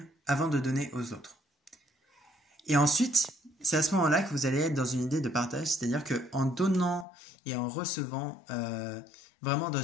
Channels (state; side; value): drops out; right; at 7.1 s